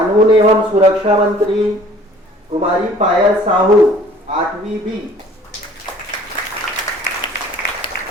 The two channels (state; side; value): normal; both; correlation 0.53